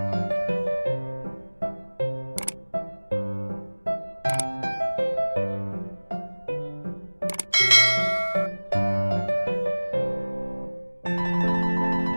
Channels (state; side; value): inverted; both; correlation -1.00